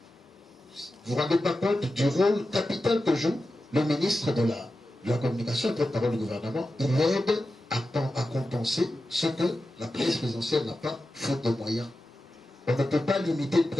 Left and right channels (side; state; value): both; normal; correlation 0.92